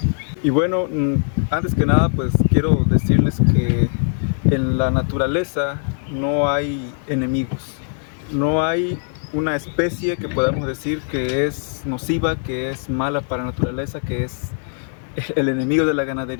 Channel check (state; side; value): silent; right; 60 dB below the other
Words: Y bueno, antes que nada pues quiero decirles que en la naturaleza no hay enemigos, no hay una especie que podamos decir que es nociva, que es mala para la naturaleza, que es el enemigo de la